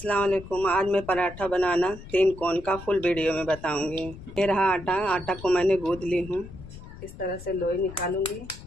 वालेकुम। आज मैं पराठा बनाना 3 कोण का फुल वीडियो में बताऊंगी। ये रहा आटा। आटा को मैंने गूंद ली हूँ। इस तरह से लोई निकालूंगी,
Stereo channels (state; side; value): noise; left; rumble, 15 dB below the sound